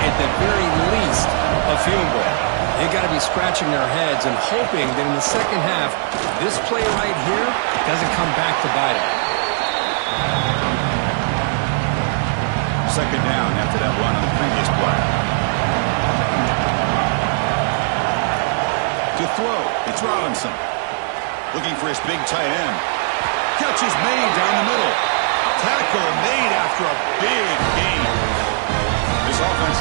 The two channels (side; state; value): left; silent; 64 dB below the other